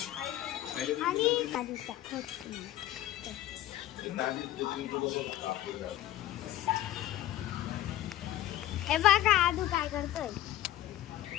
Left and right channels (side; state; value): right; quieter; 14.0 dB